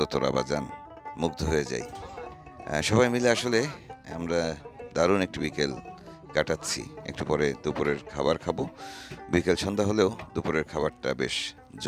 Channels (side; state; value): both; identical; correlation 1.00